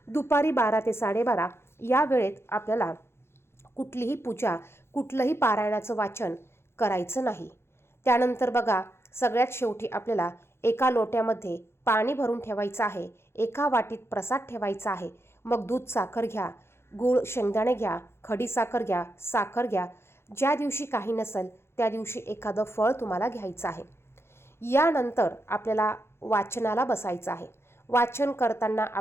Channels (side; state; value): right; late; 0.12 ms